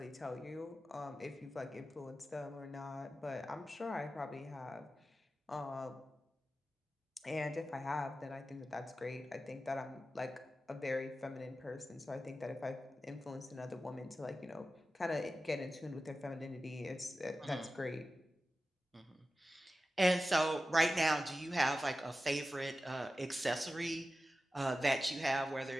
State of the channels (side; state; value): both; normal; correlation 0.93